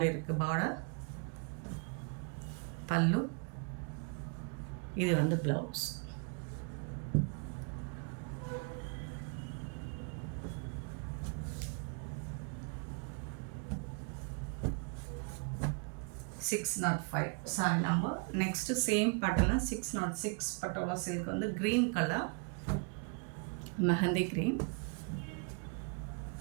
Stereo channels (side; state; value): left; quieter; 36.8 dB